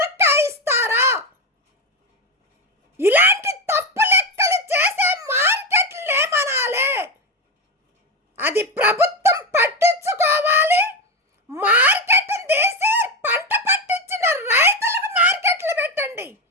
ఇస్తారా? ఇలాంటి తప్పు లెక్కలు చేసే మార్కెట్లు ఏమనాలే? అది ప్రభుత్వం పట్టించుకోవాలి. మార్కెట్ తీసి పంట పట్టించిన రైతులకు మార్కెట్లు పెట్టండి,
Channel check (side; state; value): both; normal; correlation 0.14